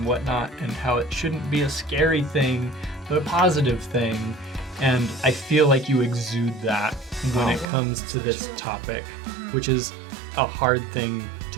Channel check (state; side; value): drops out; left; at 7.7 s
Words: whatnot, and how it shouldn't be a scary thing, but a positive thing. And I feel like you exude that when it comes to this topic, which is a hard thing